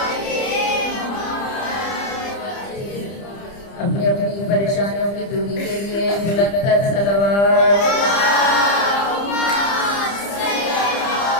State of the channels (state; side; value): late; right; 30 ms